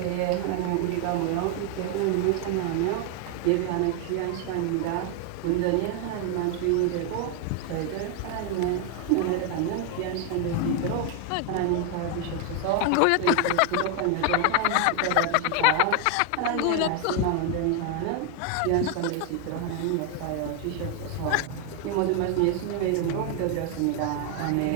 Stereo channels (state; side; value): different; both; correlation 0.01